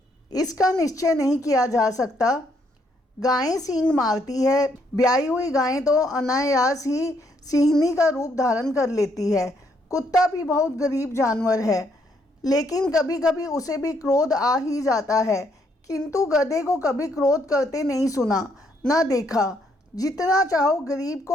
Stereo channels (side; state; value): both; normal; correlation 0.72